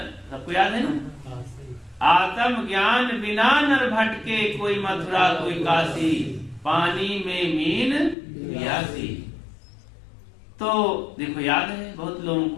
सबको याद है ना? आत्म ज्ञान बिना नर भटके, कोई मथुरा कोई काशी, पानी में मीन प्यासी। तो देखो, याद है बहुत लोगों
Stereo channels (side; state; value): right; drops out; at 8.2 s